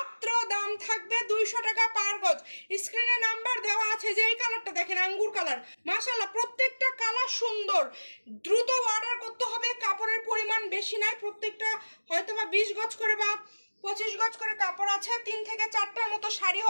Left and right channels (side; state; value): both; inverted; correlation -1.00